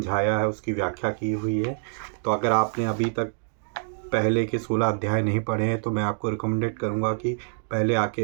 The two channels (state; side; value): silent; left; digital silence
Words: है, उसकी व्याख्या की हुई है। तो अगर आपने अभी तक पहले के 16 अध्याय नहीं पढ़े हैं तो मैं आपको रिकमेंडेड करूंगा कि